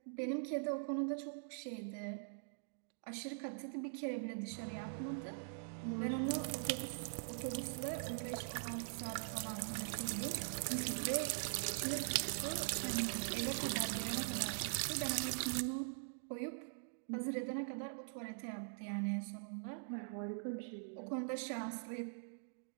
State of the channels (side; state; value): left; silent; digital silence